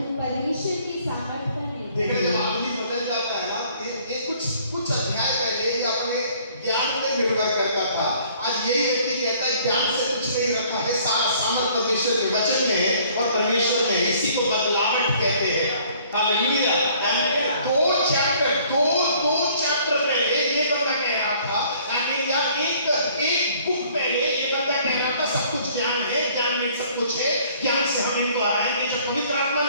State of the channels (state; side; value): inverted; both; correlation -0.58